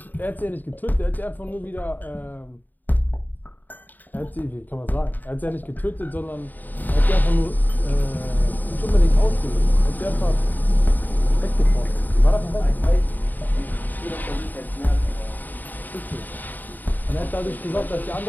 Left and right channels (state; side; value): late; right; 0.087 ms